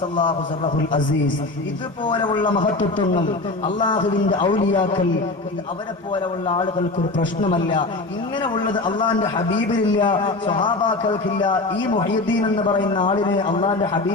സിർറഹുൽ അസീസ്, ഇതുപോലെയുള്ള മഹത്വത്വങ്ങൾ അള്ളാഹുവിന്റെ ഔലിയാക്കൾ, അവരെ പോലെയുള്ള ആളുകൾക്ക് ഒരു പ്രശ്നമല്ല. ഇങ്ങനെ ഉള്ളത് അള്ളാഹിന്റെ ഹബീബിനില്ല, സ്വഹാബാക്കൾക്കില്ല. ഈ മുഹീദ്ദീൻ എന്ന് പറയുന്ന ആളിനെ അള്ളാഹിന്റെ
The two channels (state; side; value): quieter; right; 3.1 dB